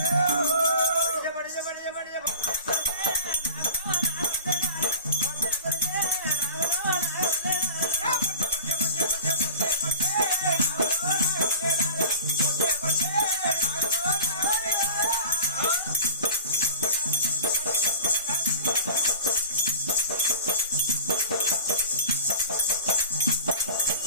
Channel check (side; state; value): both; inverted; correlation -0.37